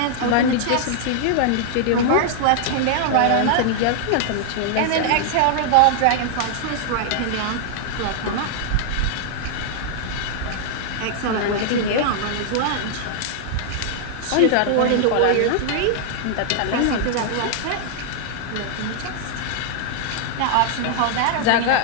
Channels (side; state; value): both; different; correlation -0.01